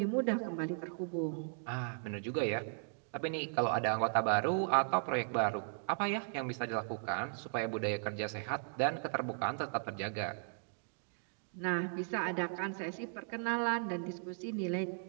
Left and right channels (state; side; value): silent; left; digital silence